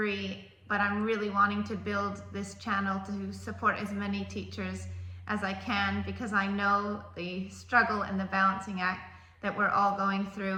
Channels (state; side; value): identical; both; correlation 1.00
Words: but I'm really wanting to build this channel to support as many teachers as I can, because I know the struggle and the balancing act that we're all going